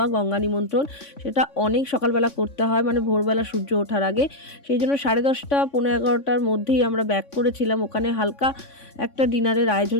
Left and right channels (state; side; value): late; right; 3.5 ms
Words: গঙ্গা নিমন্ত্রণ, সেটা অনেক সকালবেলা করতে হয়, মানে ভোরবেলা সূর্য ওঠার আগে। সেই জন্য 10:30 পৌনে 11টার মধ্যেই আমরা ব্যাক করেছিলাম। ওখানে হালকা একটা ডিনারের